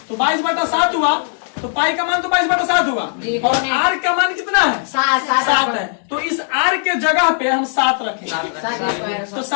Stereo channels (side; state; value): right; silent; digital silence